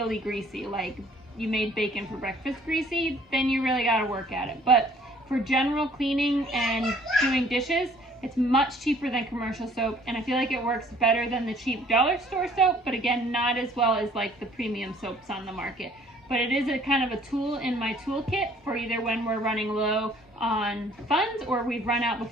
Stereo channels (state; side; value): normal; both; correlation 0.57